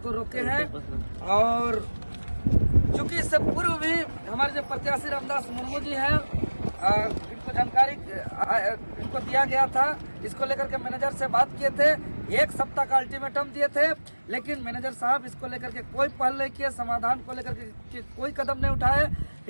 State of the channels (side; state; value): both; inverted; correlation -1.00